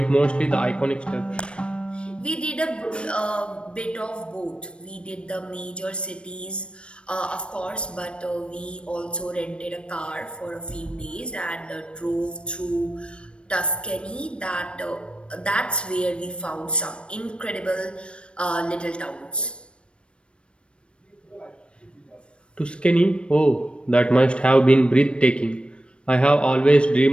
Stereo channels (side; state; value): right; late; 0.058 ms